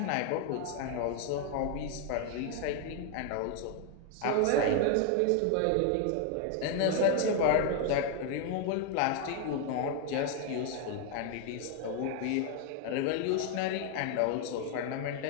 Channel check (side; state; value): both; different; correlation 0.00